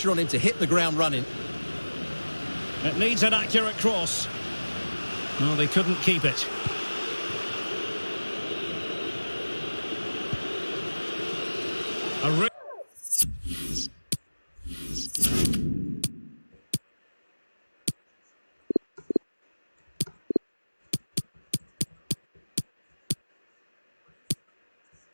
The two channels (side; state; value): both; inverted; correlation -1.00